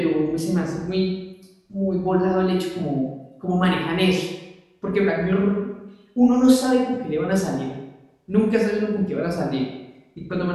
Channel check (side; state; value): both; identical; correlation 1.00